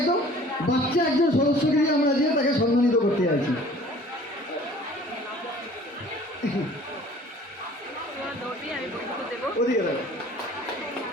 বাচ্চা একজন সদস্যকে দিয়ে আমরা যে তাকে সম্মানিত করতে যাচ্ছি। ওদিকে দেখো।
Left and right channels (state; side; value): normal; both; correlation 0.50